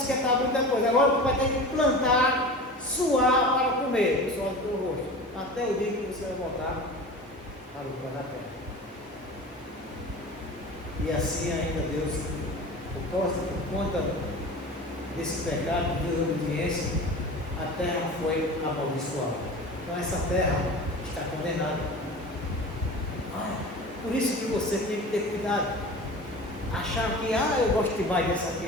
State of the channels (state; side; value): normal; both; correlation 0.35